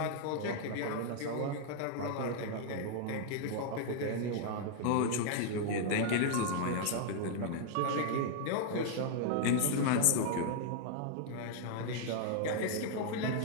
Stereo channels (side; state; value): both; different; correlation -0.01